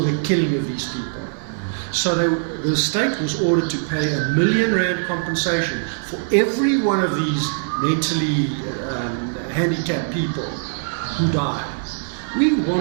killing of these people. So the state was ordered to pay R1 million compensation for every one of these mentally handicapped people who died. We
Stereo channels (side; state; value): left; silent; 58 dB below the other